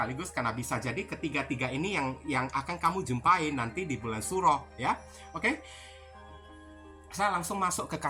karena bisa jadi ketiga-tiga ini yang akan kamu jumpai nanti di bulan Suro ya. Oke? Saya langsung masuk ke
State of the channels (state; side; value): identical; both; correlation 1.00